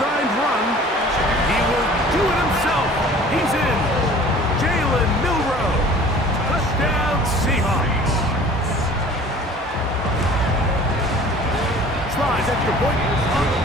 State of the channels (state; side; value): normal; both; correlation 0.47